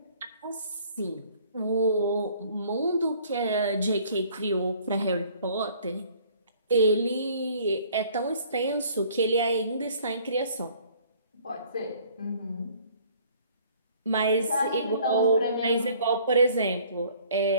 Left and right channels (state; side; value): inverted; both; correlation -0.56